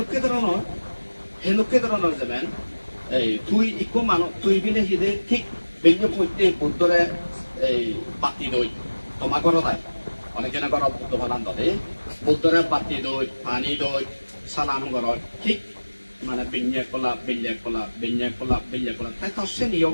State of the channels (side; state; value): both; inverted; correlation -1.00